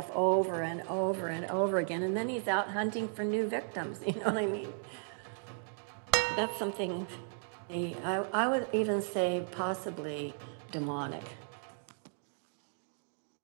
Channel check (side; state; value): left; silent; 54 dB below the other